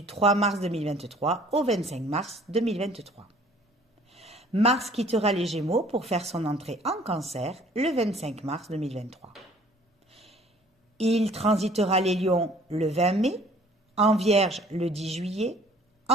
3 mars 2023 au 25 mars 2023. Mars quittera les Gémeaux pour faire son entrée en Cancer le 25 mars 2023. Il transitera les Lions le 20 mai, en Vierge le 10 juillet,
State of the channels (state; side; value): normal; both; correlation 0.55